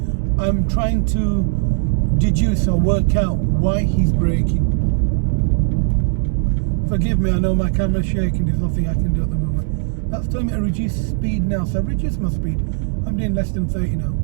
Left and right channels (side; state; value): left; silent; 67 dB below the other